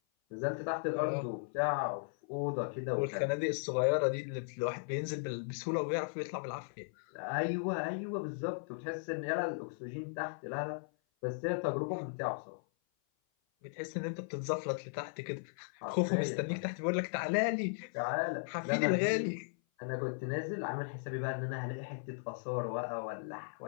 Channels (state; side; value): silent; right; 53 dB below the other